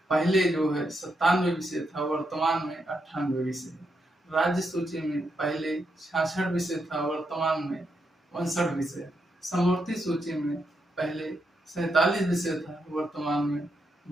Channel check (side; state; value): both; normal; correlation 0.82